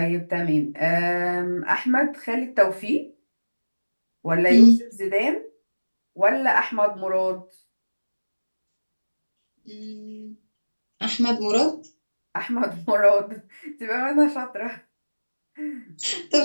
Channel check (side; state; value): both; inverted; correlation -1.00